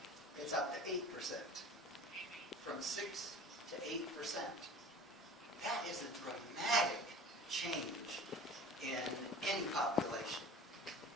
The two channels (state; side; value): normal; both; correlation 0.41